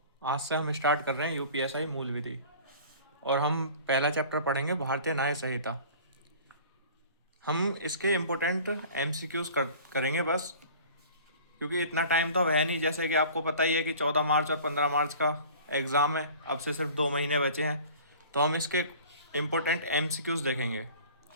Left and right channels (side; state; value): both; inverted; correlation -0.44